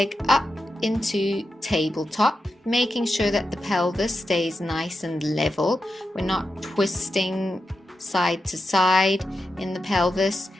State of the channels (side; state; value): both; normal; correlation 0.89